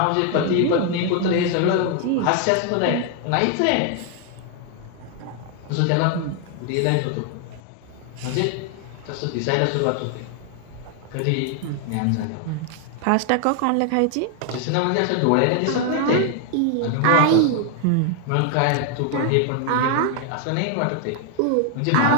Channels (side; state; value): both; different; correlation 0.00